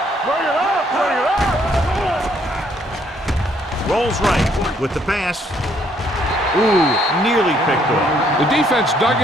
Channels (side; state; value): both; normal; correlation 0.68